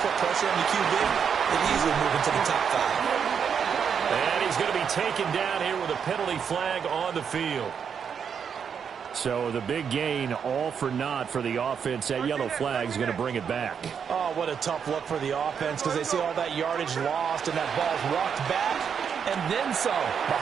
put pressure on the QB, they'd easily move into the top 5. And he's going to be taken down here with a penalty flag on the field. So the big gain, all for naught for the offense. That yellow flag is going to bring it back. Oh, what a tough look for the offense because they see all that yardage lost and that ball's walked back and then some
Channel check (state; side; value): quieter; left; 7.2 dB